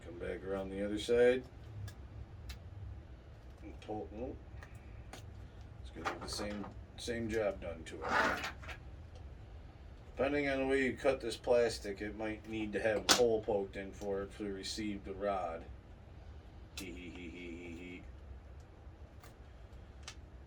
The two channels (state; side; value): identical; both; correlation 1.00